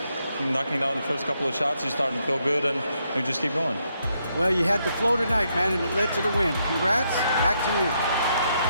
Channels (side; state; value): both; inverted; correlation -0.78